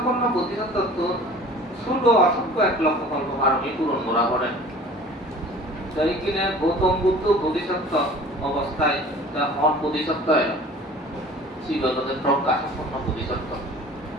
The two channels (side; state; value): both; normal; correlation 0.45